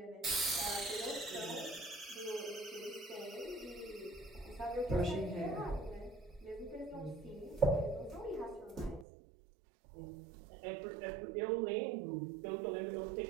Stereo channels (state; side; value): drops out; left; at 9.1 s